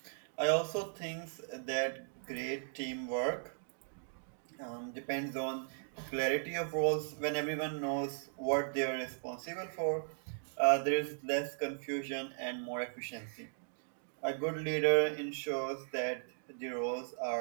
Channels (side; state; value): left; silent; digital silence